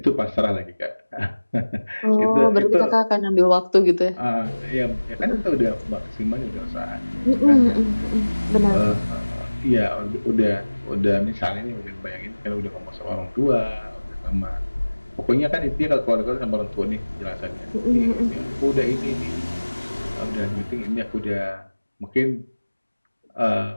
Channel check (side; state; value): both; inverted; correlation -1.00